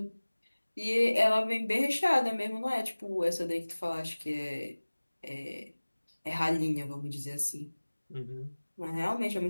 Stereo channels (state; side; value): inverted; both; correlation -1.00